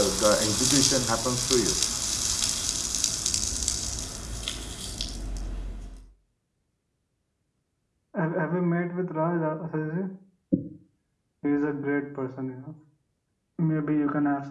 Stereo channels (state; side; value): identical; both; correlation 1.00